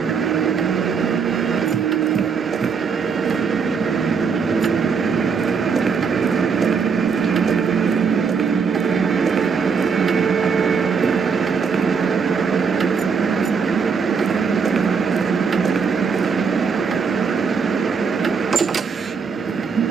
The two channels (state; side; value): quieter; left; 5.7 dB